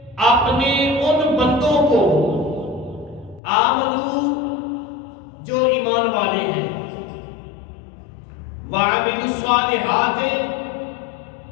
اپنے ان بندوں کو آمنو جو ایمان والے ہیں، وعملوا الصالحات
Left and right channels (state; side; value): drops out; right; at 3.4 s